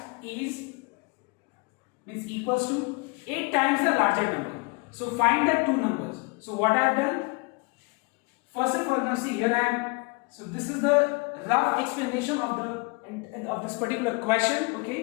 means equals to 8 times the larger number. So find the two numbers. So what I have done, first of all, now see here I am. So this is the rough explanation of this particular question.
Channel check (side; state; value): right; quieter; 29.2 dB